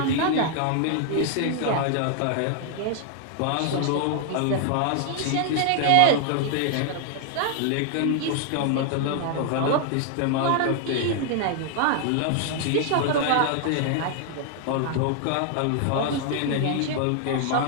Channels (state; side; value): different; both; correlation 0.00